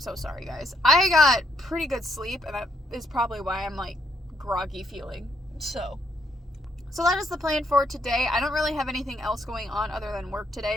sorry, guys. I got pretty good sleep, and that is probably why I'm like groggy feeling. So that is the plan for today. I don't really have anything else going on other than work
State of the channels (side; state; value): both; normal; correlation 0.73